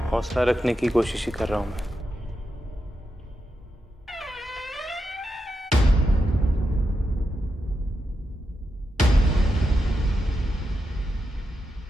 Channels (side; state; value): both; normal; correlation 0.87